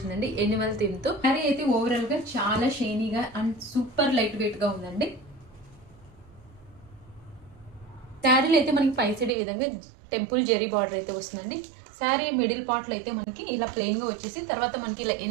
ఎనిమల్ థీమ్ తో. శారీ అయితే ఓవరాల్ గా చాలా షైనీగా అండ్ సూపర్ లైట్ వెయిట్ గా ఉందండి. శారీలో అయితే మనకి పై సైడ్ ఈ విధంగా టెంపుల్ జెరీ బార్డర్ అయితే వస్తుందండి. శారీ మిడిల్ పార్ట్ లో అయితే మనకి ఇలా ప్లెయిన్ గా వచ్చేసి తర్వాత మనకి ఇలా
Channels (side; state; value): left; drops out; at 9.3 s